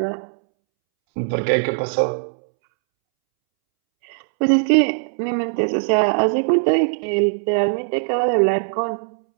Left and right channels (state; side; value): silent; left; 65 dB below the other